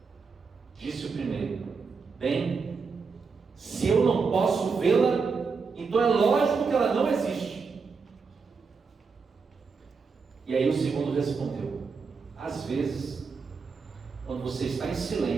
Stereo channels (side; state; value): left; quieter; 5.0 dB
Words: Disse o primeiro: bem, se eu não posso vê-la, então é lógico que ela não existe. E aí o segundo respondeu: às vezes, quando você está em